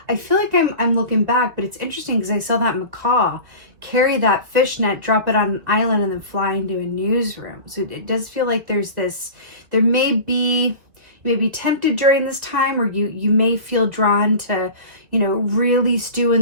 I feel like I'm looking back, but it's interesting because I saw that macaw carry that fishnet, drop it on an island, and then fly into a newsroom. So it does feel like there's this, there may be, you may be tempted during this time, or you may feel drawn to, you know, really stew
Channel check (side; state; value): left; late; 2.5 ms